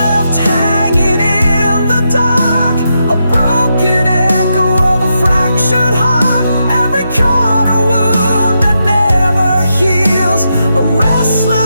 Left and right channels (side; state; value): both; inverted; correlation -0.84